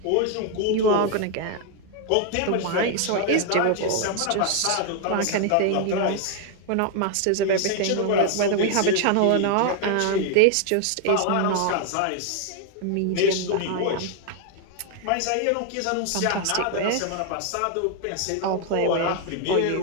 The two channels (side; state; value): both; different; correlation 0.01